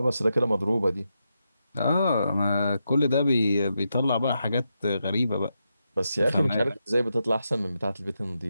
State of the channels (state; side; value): inverted; both; correlation -0.85